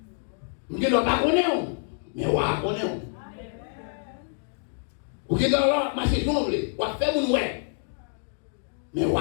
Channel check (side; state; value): right; silent; digital silence